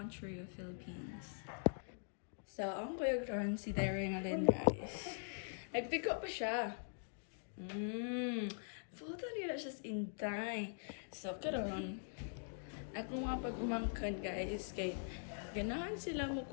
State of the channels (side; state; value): right; silent; digital silence